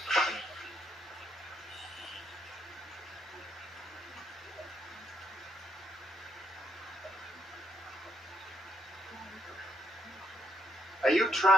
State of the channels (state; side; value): normal; both; correlation 0.76